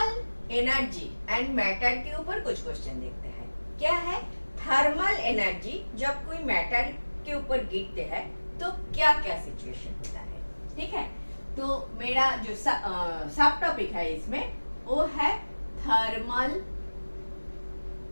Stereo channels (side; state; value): both; inverted; correlation -1.00